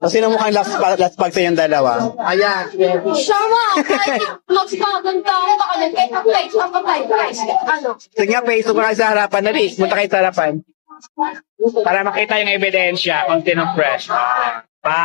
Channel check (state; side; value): silent; right; digital silence